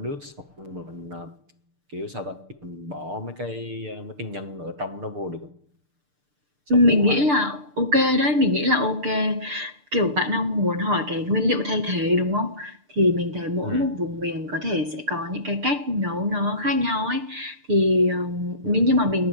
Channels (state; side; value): late; left; 6.7 ms